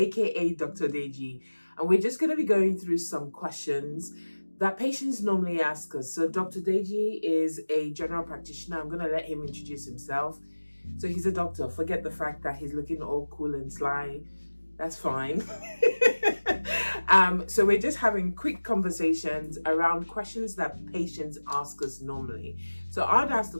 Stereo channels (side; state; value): both; inverted; correlation -1.00